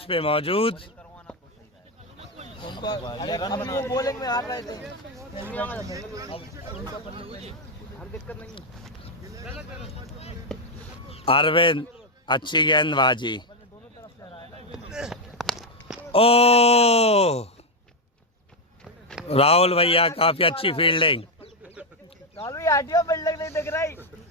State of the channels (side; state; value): both; normal; correlation 0.02